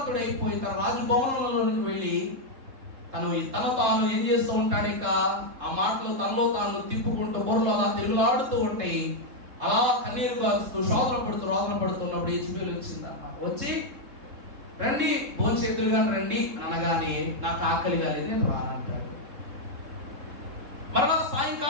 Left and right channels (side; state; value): left; late; 3.7 ms